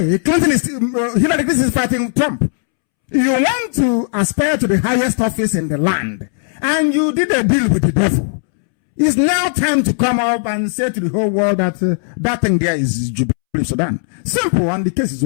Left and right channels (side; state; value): right; silent; 69 dB below the other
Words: Clinton is Hillary Clinton is fighting Trump. You want to aspire to the highest office in the land, and you did a deal with the devil. It's now time to come up and say to the whole world that that thing there is Jubilee Sudan. Simple, and the case is